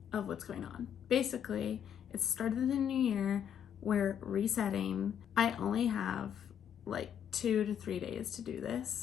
of what's going on. Basically, it's the start of the new year. We're resetting. I only have like 2 to 3 days to do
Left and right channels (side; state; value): right; quieter; 8.8 dB